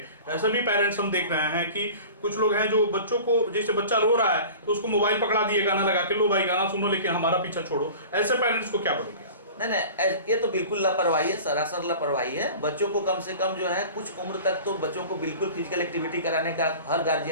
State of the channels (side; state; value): both; inverted; correlation -0.39